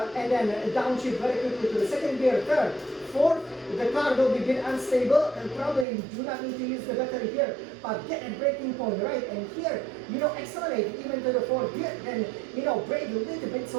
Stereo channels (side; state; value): left; drops out; at 5.9 s